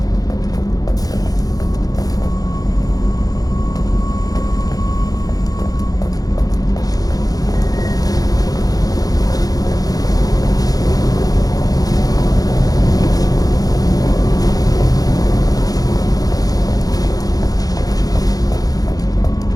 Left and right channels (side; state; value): right; late; 0.18 ms